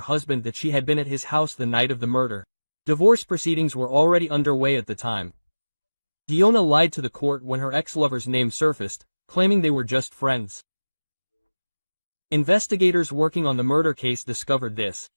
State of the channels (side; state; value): both; inverted; correlation -1.00